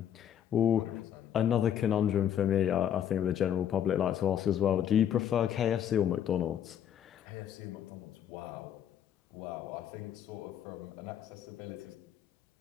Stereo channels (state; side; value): quieter; right; 9.7 dB